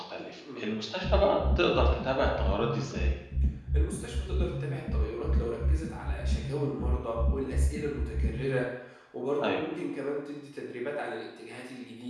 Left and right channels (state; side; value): identical; both; correlation 1.00